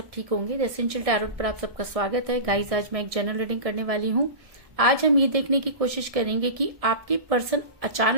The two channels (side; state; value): left; late; 1.7 ms